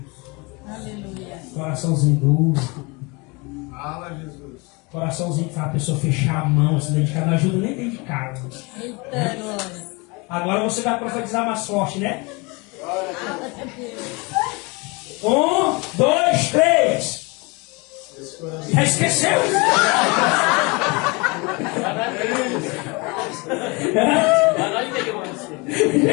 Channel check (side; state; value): right; quieter; 27.5 dB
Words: Aleluia. Coraçãozinho duro. Fala, Jesus. Coraçãozinho que faz a pessoa fechar a mão, se dedicar, não ajuda nem dentro de casa. Eita, glória. Agora você vai profetizar mais forte, né? 1, 2, 3. Já esqueceu? Já